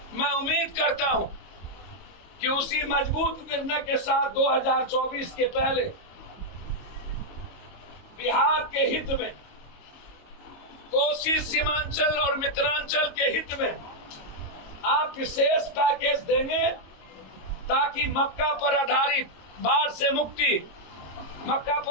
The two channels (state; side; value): late; right; 22 ms